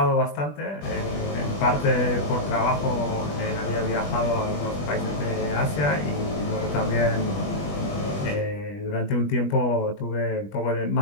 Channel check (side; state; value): right; late; 20 ms